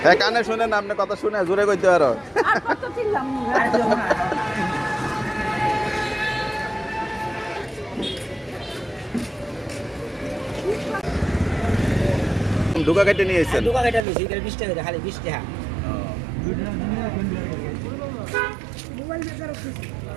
হ্যাঁ কানে শুনেন, আপনি কথা শুনে জোরে কইতে পারো। ঢুকা কেটে নিয়ে এসেছেন? দোকান এটা নিছি, এটা 20 টাকা খালি 20 টাকা।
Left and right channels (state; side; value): drops out; left; at 14.1 s